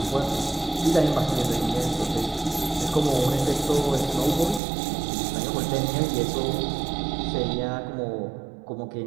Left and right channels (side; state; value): left; drops out; at 4.6 s